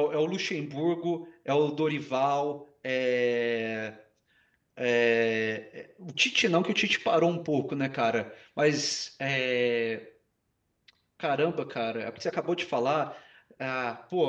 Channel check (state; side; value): identical; both; correlation 1.00